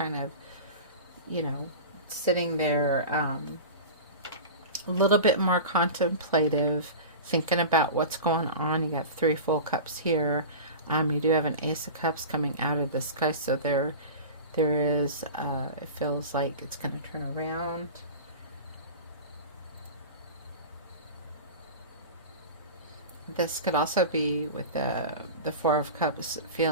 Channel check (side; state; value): both; inverted; correlation -0.31